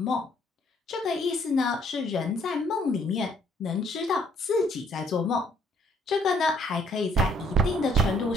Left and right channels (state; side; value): normal; both; correlation 0.65